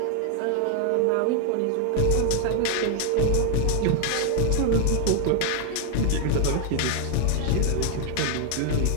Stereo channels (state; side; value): different; both; correlation 0.00